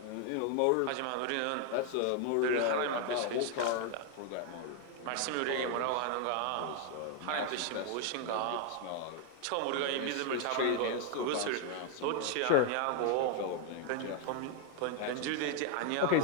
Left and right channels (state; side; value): different; both; correlation 0.00